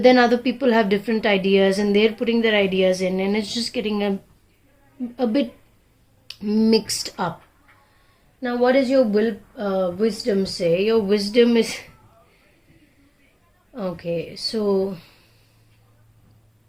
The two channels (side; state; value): both; identical; correlation 1.00